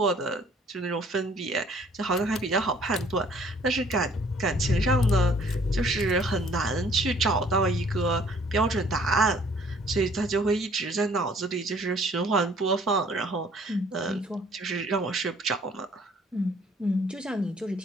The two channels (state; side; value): normal; both; correlation 0.58